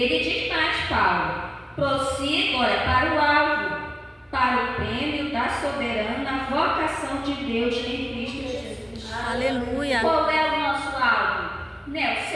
diz mais, Paulo: prossiga, olha, para o alvo, para o prêmio da soberana vocação de Deus em Cristo Jesus. Aleluia. Qual é o nosso alvo? Né, o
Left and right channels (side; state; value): both; identical; correlation 1.00